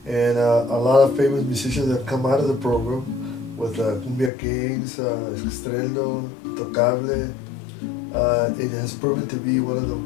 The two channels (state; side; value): drops out; right; at 4.3 s